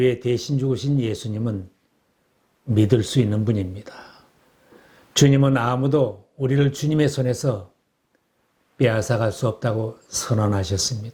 대신 죽으신 예수님은 믿을 수 있는 분입니다. 주님은 아무도 우리를 주님의 손에서 빼앗아갈 수 없다고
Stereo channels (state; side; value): identical; both; correlation 1.00